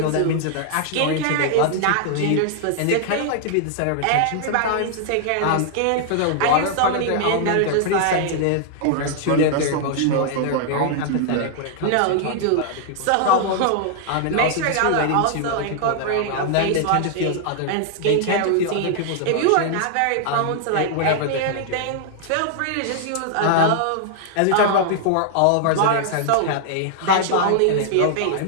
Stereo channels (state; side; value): different; both; correlation -0.01